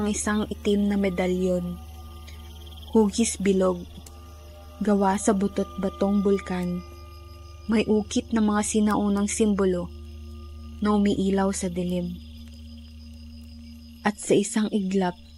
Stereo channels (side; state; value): both; identical; correlation 1.00